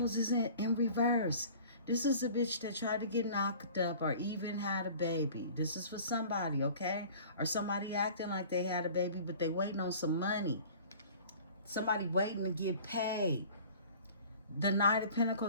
is in reverse. This is a bitch that tried to get knocked up or even had a baby. This is for somebody, okay? Or somebody acting like they had a baby, but they waiting on some money. Somebody waiting to get paid. The Knight of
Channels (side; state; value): both; inverted; correlation -0.46